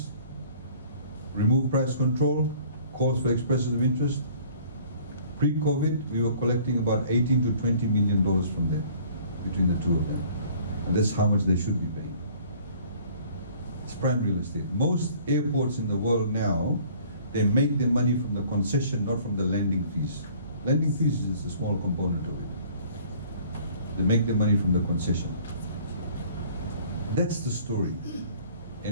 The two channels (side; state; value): both; inverted; correlation -0.53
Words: removed price control, calls for expressions of interest. Pre-COVID, we were collecting about 18 to 20 million dollars from them, between the two of them. And that's how much they should be paying. It's prime real estate. Most airports in the world now, they make their money from the concession, not from the landing fees. Landing fees is just a small component of it. They make their money from the concession. That's the story.